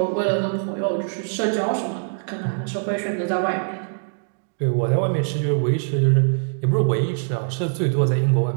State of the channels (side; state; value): left; silent; digital silence